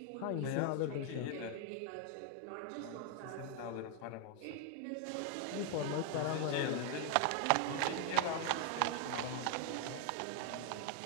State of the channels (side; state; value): both; different; correlation 0.00